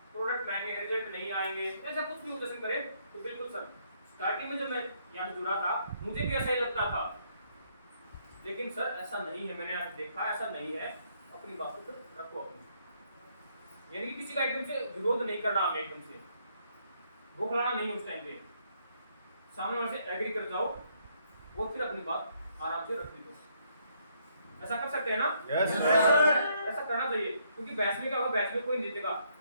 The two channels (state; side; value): inverted; both; correlation -0.71